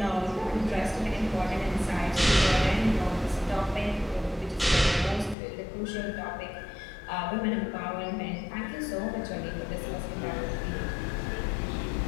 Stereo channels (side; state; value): right; drops out; at 5.4 s